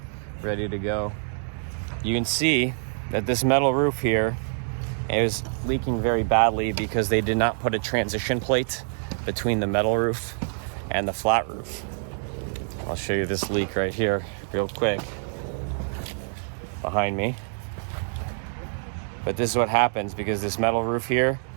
ready to go. You can see that this metal roof here is leaking very badly because they did not put a transition plate between the metal roof and the flat roof. I'll show you this leak right here real quick behind me. But this is what happens because this metal roof here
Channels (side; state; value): left; silent; digital silence